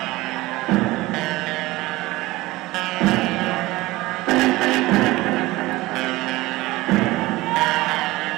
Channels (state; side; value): quieter; left; 19.4 dB